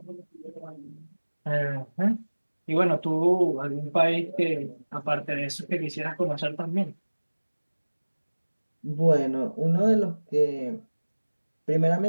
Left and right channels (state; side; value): inverted; both; correlation -1.00